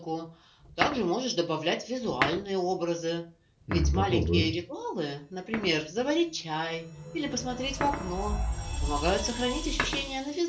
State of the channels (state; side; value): identical; both; correlation 1.00